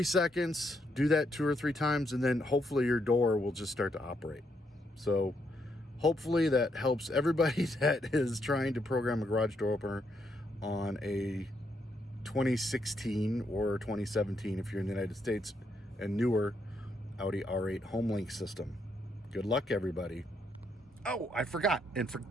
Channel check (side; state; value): both; normal; correlation 0.77